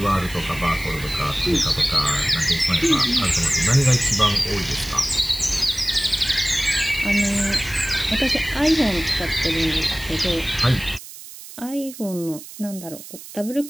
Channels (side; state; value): right; noise; hiss, 15 dB below the sound